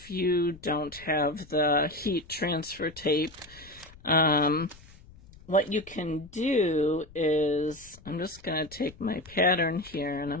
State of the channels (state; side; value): noise; left; rumble, 22 dB below the sound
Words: you don't have the heat transfer tape, what you can do is, I'm just going to take my pattern here and